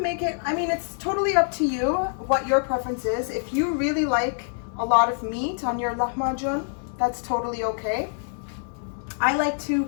make it, I mean, it's totally up to you what your preference is. If you really like a lot of meat on your lahmacun, that's totally okay. I like to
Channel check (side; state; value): right; silent; digital silence